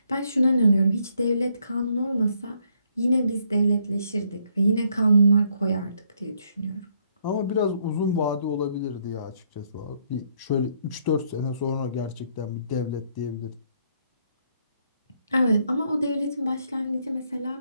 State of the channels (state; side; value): inverted; both; correlation -0.71